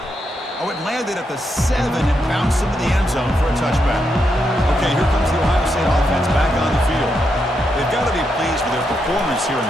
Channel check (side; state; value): both; normal; correlation 0.82